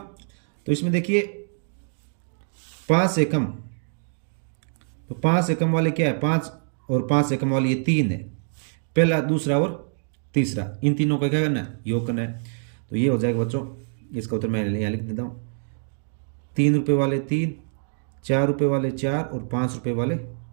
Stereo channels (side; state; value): left; silent; digital silence